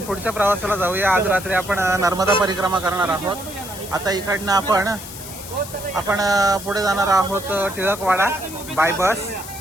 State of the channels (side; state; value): left; noise; hiss, 12 dB below the sound